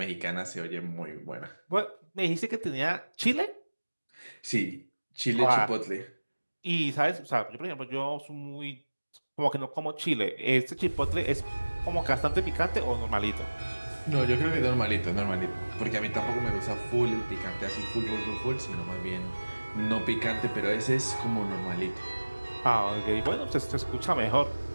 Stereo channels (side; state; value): both; inverted; correlation -1.00